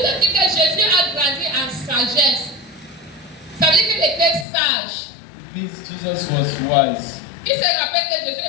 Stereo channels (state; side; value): drops out; right; at 4.5 s